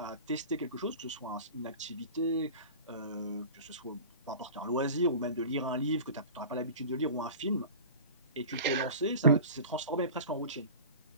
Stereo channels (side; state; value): both; inverted; correlation -0.37